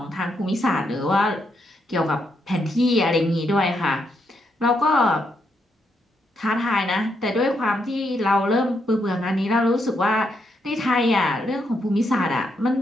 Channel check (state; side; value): normal; both; correlation 0.79